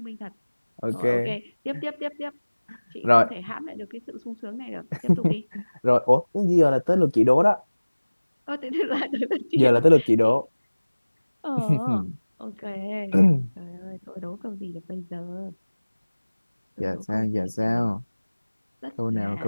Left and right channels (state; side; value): inverted; both; correlation -1.00